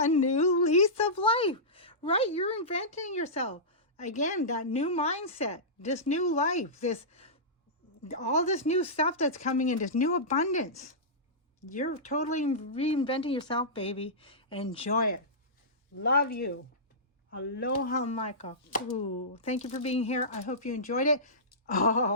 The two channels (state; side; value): normal; both; correlation -0.17